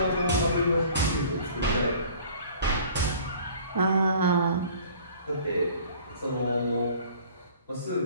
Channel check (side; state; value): both; inverted; correlation -0.50